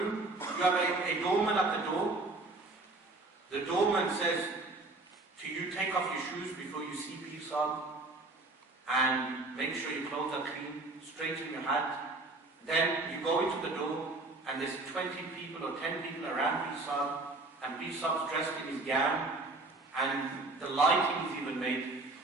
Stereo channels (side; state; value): left; quieter; 3.2 dB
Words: you have a doorman at the door. The doorman says to you, take off your shoes before you see peace on, and make sure your clothes are clean, straighten your hat. Then you go into the door, and there's 20 people or 10 people around Bisab, and Bisab's dressed in his gown, and the lighting is even made